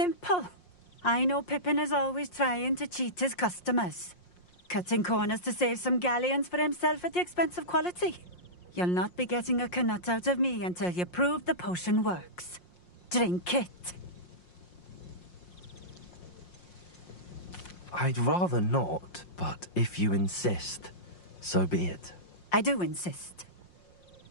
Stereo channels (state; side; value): late; right; 5.6 ms